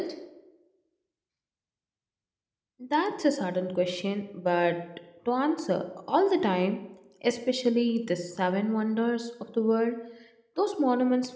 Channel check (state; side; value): identical; both; correlation 1.00